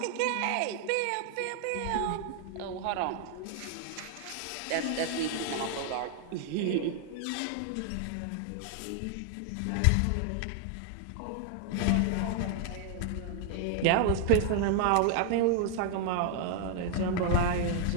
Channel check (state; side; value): different; both; correlation 0.00